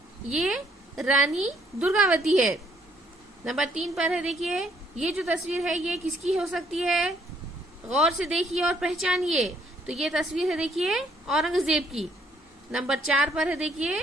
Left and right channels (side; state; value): both; normal; correlation 0.67